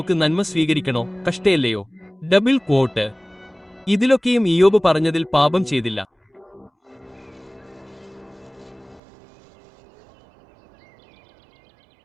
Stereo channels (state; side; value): drops out; left; at 9.0 s